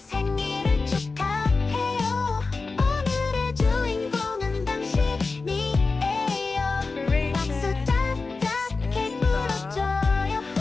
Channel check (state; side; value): quieter; right; 4.0 dB